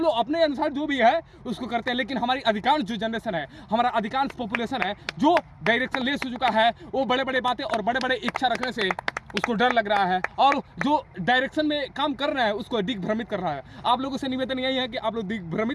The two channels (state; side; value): identical; both; correlation 1.00